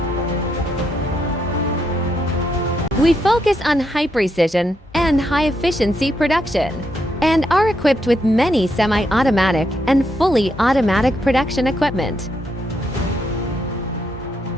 We focus on high precision and high-efficiency production, and are equipped with many semi-automatic and fully automatic production equipment.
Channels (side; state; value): both; normal; correlation 0.79